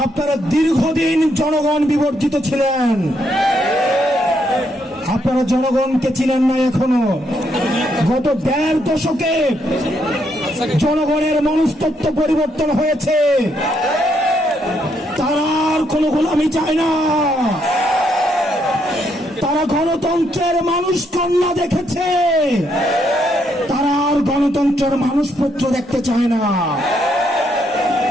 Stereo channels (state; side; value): normal; both; correlation 0.75